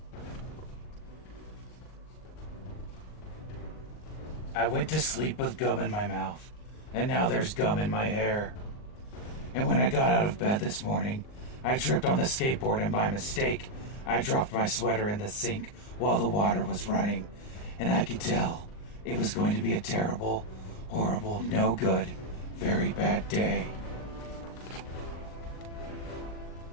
I went to sleep with gum in my mouth, and now there's gum in my hair. And when I got out of bed this morning, I tripped on the skateboard and by mistake, I dropped my sweater in the sink while the water was running, and I could tell it was going to be a terrible, horrible, no good, very bad day.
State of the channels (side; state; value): right; late; 39 ms